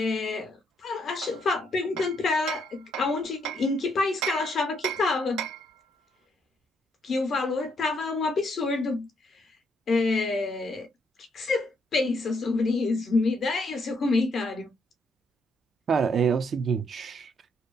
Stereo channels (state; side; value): normal; both; correlation 0.73